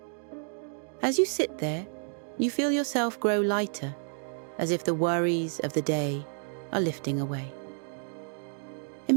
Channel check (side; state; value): left; silent; 58 dB below the other